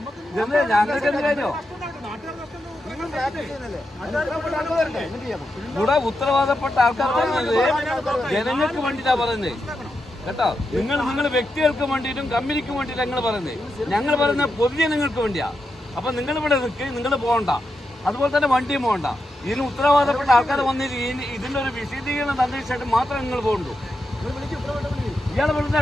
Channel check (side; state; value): both; normal; correlation 0.86